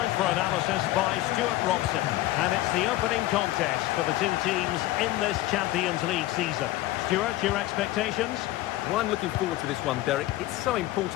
for analysis by Stuart Robson. And it's the opening contest for the two teams in this Champions League season. Stuart, your expectations? Well, I'm looking forward to this one, Derek. It's so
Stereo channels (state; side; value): quieter; right; 16.7 dB